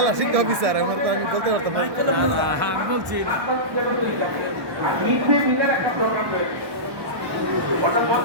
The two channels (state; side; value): late; left; 1.2 ms